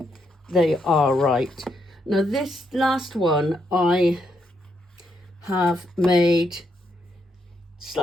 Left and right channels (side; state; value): both; normal; correlation 0.78